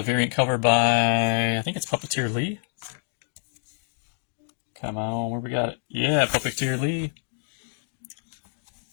variant cover by, I think it's Puppeteer Lee. Come on, where we got it? Yeah, Puppeteer Lee.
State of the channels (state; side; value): silent; right; 58 dB below the other